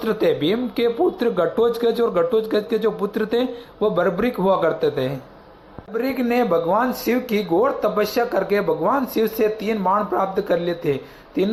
थे। भीम के पुत्र घटोत्कच और घटोत्कच के जो पुत्र थे वो बर्बरीक हुआ करते थे। बर्बरीक ने भगवान शिव की घोर तपस्या करके भगवान शिव से 3 बाण प्राप्त कर लिए थे।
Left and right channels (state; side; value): identical; both; correlation 1.00